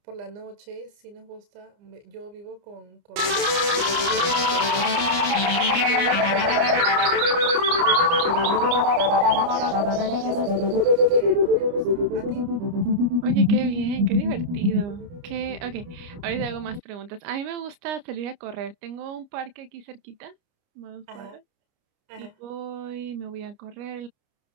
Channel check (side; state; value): left; late; 29 ms